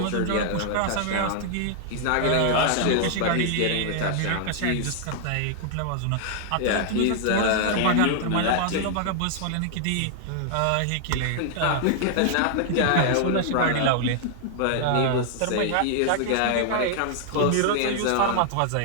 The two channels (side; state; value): both; different; correlation -0.01